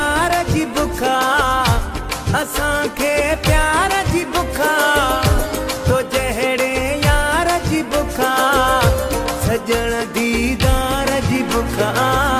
जी बुखा असांखे प्यार जी बुखा तो जहिड़े यार जी बुखा सजण दीदार जी बुखा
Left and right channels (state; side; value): identical; both; correlation 1.00